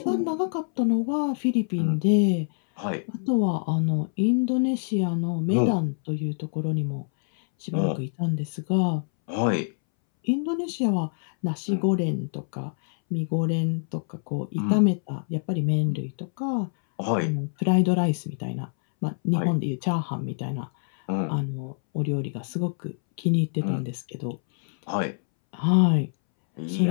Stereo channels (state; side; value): silent; right; 61 dB below the other